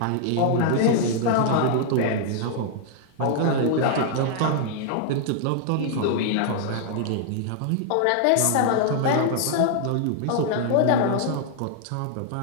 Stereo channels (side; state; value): both; different; correlation -0.01